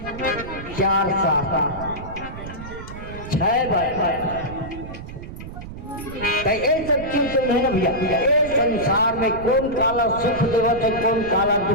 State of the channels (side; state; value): right; noise; rumble, 11 dB below the sound